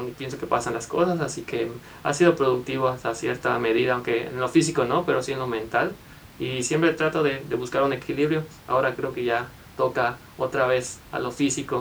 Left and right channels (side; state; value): both; identical; correlation 1.00